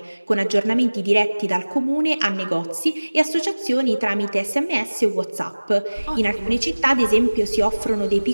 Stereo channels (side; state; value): both; inverted; correlation -1.00